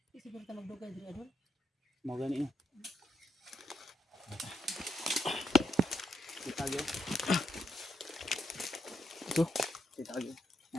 Siguro ta magdugay diri Idol. Mo gani no. Itagyo. Ito. Itagyo.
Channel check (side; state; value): both; normal; correlation 0.79